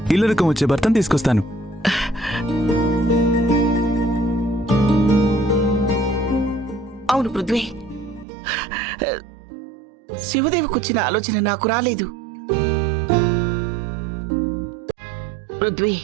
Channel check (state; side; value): drops out; left; at 8.2 s